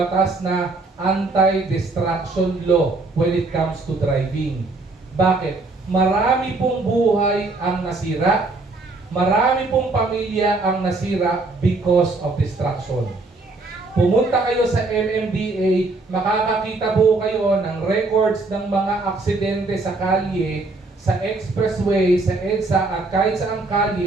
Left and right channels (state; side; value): quieter; left; 3.4 dB